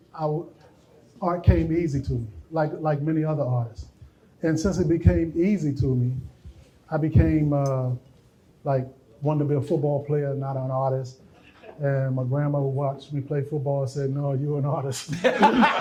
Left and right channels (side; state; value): both; identical; correlation 1.00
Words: art came easy to me, like many other artists. And since it became easy to me, I became wanted to be a football player, not an artist. And my grandmother watched me play football and said, "No, you're an artist."